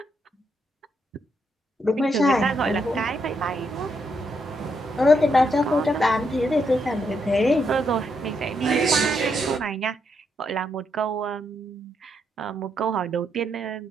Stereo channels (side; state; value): both; normal; correlation 0.78